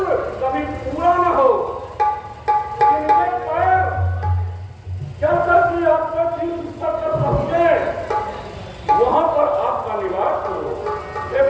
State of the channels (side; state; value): both; identical; correlation 1.00